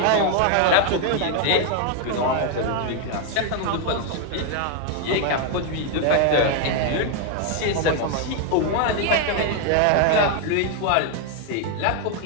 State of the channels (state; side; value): different; both; correlation 0.01